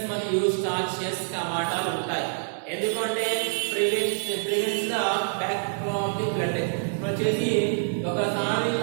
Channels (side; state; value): left; silent; 61 dB below the other